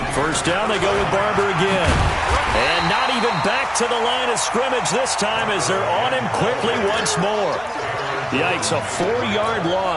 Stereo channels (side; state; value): both; identical; correlation 1.00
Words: 1st down, they go with Barber again. And not even back to the line of scrimmage this time as they're on him quickly once more. Yikes, a 4-yard